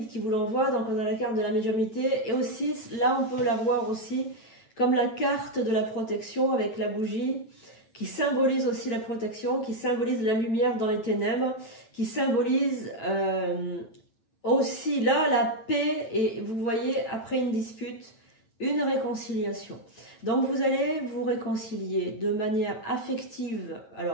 qui vous l'envoient, donc on a la carte de la médiumité, et aussi là on peut la voir aussi comme la carte de la protection avec la bougie, qui symbolise aussi la protection, qui symbolise la lumière dans les ténèbres, qui symbolise aussi là la paix, et vous voyez après une dispute, une réconciliation. Donc vous allez vous réconcilier de manière affective.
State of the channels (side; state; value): right; late; 9.0 ms